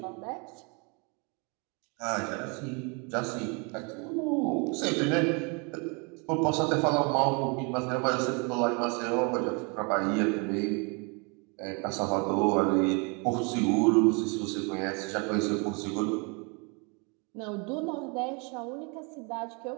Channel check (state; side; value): quieter; left; 32.8 dB